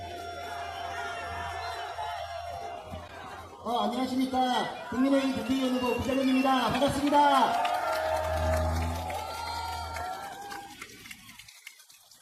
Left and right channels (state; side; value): identical; both; correlation 1.00